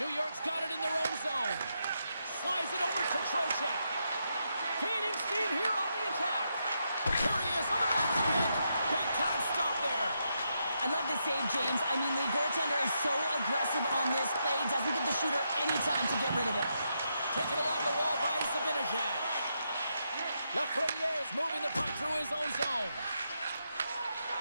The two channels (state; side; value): inverted; both; correlation -0.82